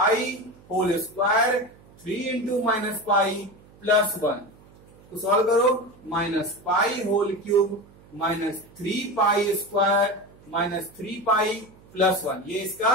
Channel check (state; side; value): noise; right; hum, 25 dB below the sound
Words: whole square 3 into minus pi plus 1। तो सॉल्व करो, minus pi whole cube minus 3 pi square minus 3 pi plus 1, ये इसका